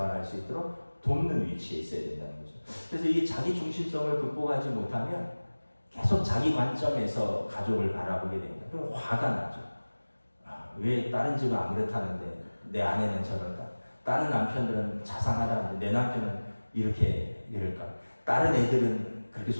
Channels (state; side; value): inverted; both; correlation -1.00